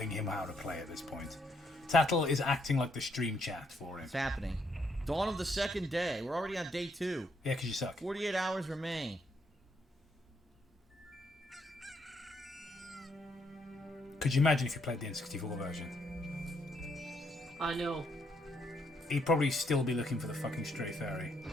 him how to play at this point. Tattle is acting like the stream chat for him. What's happening? Dawn of the second day. We're already on day 2. Yeah, because you suck. 48 hours remain. Could you imagine if you played the N64 version? I know. He'd probably still be looking for the fucking stray fairy.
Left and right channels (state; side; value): normal; both; correlation 0.74